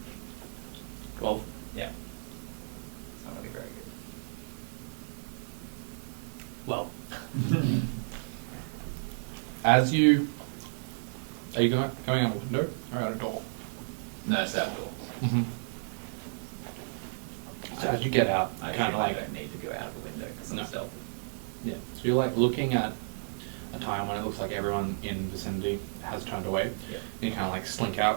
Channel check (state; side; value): silent; left; digital silence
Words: 12. As you... Are you going out a window or out a door? No, it's outdoor. Mm-hmm. So as you get out, I kind of I like... don't need to go out of a window because I'm No. stealthy. Yeah. So you're like looking at a time when it looks like everyone in the vicinity has turned away. Yeah. And you kind of like slink